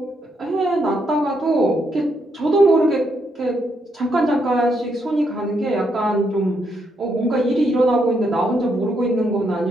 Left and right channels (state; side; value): normal; both; correlation 0.77